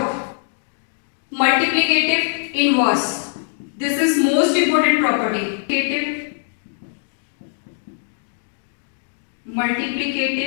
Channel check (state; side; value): silent; right; digital silence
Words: multiplicative inverse. This is most important property,